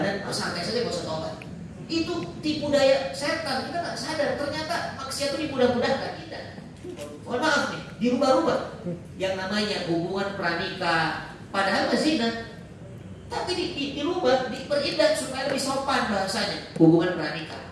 santai saja gak usah taubat. Itu tipu daya setan, kita gak sadar. Ternyata maksiat itu dimudah-mudahkan kita. Mohon maaf nih, dirubah-rubah. Yang namanya hubungan pranikah, padahal zina, tapi dirubah, diperindah supaya lebih sopan bahasanya. Hubungan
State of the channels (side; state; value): both; identical; correlation 1.00